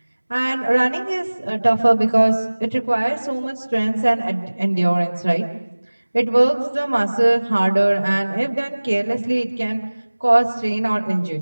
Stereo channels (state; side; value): inverted; both; correlation -1.00